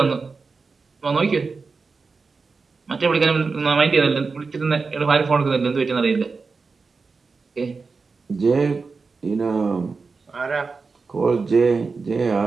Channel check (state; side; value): quieter; left; 4.5 dB